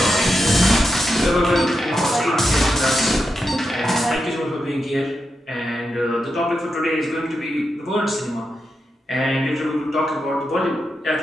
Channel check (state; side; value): normal; both; correlation 0.87